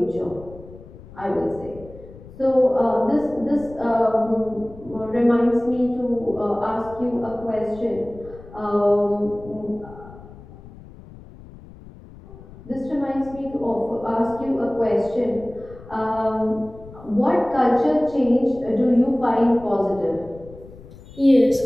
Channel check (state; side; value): noise; left; rumble, 19 dB below the sound